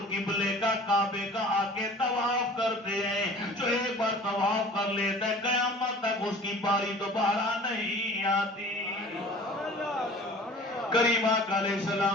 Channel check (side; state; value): both; normal; correlation 0.45